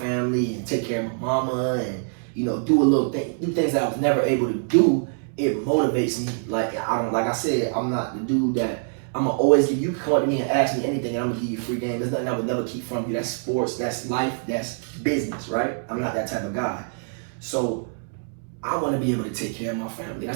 and take care of my mama, and you know, do things that I was never able to do, it motivates me. Like I said, I'm not the dude that I'm gonna always give. You can come up to me and ask me anything, and I'm gonna give you free game. There's nothing I would never keep from you. That's sports, that's life, that's business, right? I'm not that type of guy. So I want to be able to take care of my family.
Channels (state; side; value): silent; left; 62 dB below the other